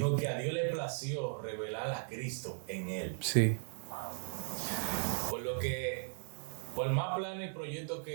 que a Dios le plació revelar a Cristo en él. Sí. Por lo que, por más planes y proyectos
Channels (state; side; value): silent; left; digital silence